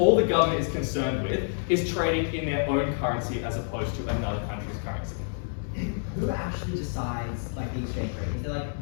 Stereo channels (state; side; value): silent; right; 59 dB below the other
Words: the government is concerned with is trading in their own currency as opposed to another country's currency. Who actually decides the exchange rate? Is there